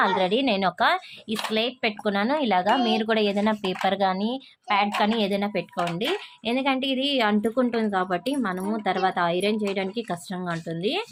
ఆల్రెడీ నేను ఈ స్లేట్ పెట్టుకున్నాను. ఇలాగా మీరు కూడా ఏదైనా పేపర్ కానీ ప్యాడ్ కానీ ఏదైనా పెట్టుకోండి, ఎందుకంటే ఇది అంటుకుంటుంది కాబట్టి మనము తర్వాత ఐరన్ చేయడానికి కష్టంగా ఉంటుంది.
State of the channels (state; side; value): identical; both; correlation 1.00